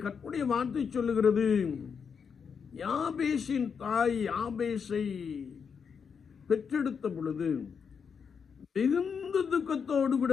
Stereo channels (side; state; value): right; quieter; 6.4 dB